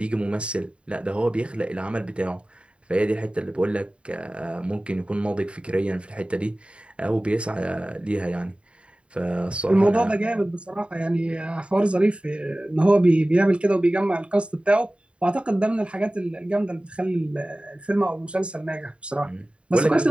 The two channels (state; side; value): late; left; 0.058 ms